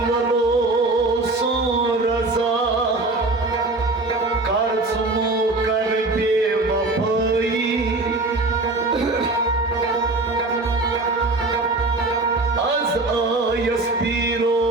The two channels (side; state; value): left; quieter; 3.1 dB